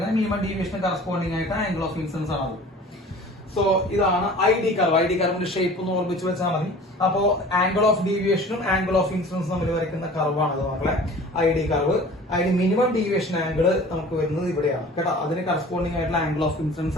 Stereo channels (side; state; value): both; normal; correlation 0.44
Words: മിനിമം ഡീവിയേഷൻ കറസ്പോണ്ടിങ് ആയിട്ട് ആംഗിൾ ഓഫ് ഇൻസിഡൻസ് ആണ് അത്. സോ ഇതാണ് ID കർവ്. ID കർവിന്റെ ഷേപ്പ് ഒന്ന് ഓർമ്മിച്ച് വെച്ചാൽ മതി. അപ്പോ ആംഗിൾ ഓഫ് ഡീവിയേഷനും ആംഗിൾ ഓഫ് ഇൻസിഡൻസും തമ്മിൽ വരയ്ക്കുന്ന കർവാണ് മക്കളെ ID കർവ്. അതിന് മിനിമം ഡീവിയേഷൻ ആംഗിൾ നമുക്ക് വരുന്നത് ഇവിടെയാണ് കേട്ടോ. അതിന് കറസ്പോണ്ടിങ് ആയിട്ടുള്ള ആംഗിൾ ഓഫ്